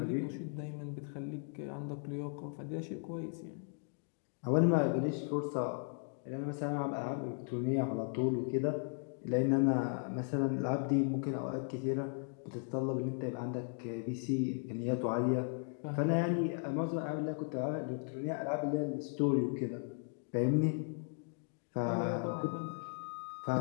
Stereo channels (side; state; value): right; silent; 53 dB below the other